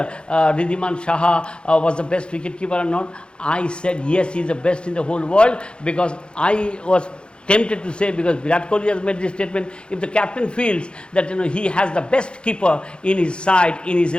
Riddhiman Saha was the best wicketkeeper or not. I said yes, he is the best in the whole world, because I was tempted to say, because Virat Kohli has made this statement, if the captain feels that he has the best keeper in his side, in his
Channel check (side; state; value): right; late; 0.054 ms